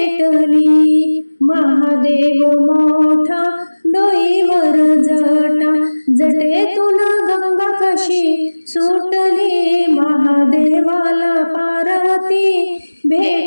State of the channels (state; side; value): inverted; both; correlation -1.00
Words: महादेव मोठा डोईवर जटा, जटेतून गंगा कशी सुटली, महादेवाला पार्वती